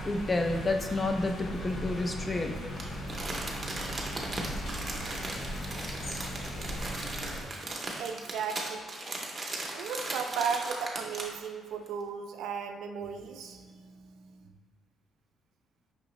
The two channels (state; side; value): normal; both; correlation 0.76